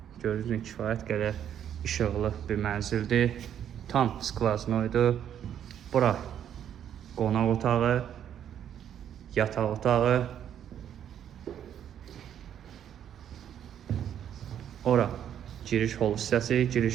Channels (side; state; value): left; quieter; 9.6 dB